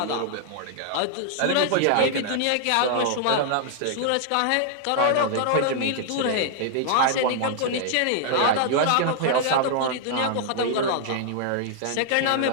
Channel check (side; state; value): both; different; correlation -0.01